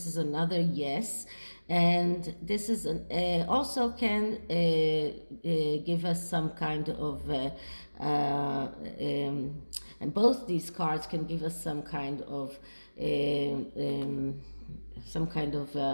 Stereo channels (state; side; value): inverted; both; correlation -1.00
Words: is another yes. And this is also can give us some kind of and both these cards can give us some kind of